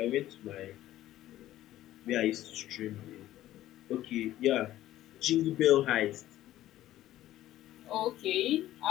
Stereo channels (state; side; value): quieter; right; 14.1 dB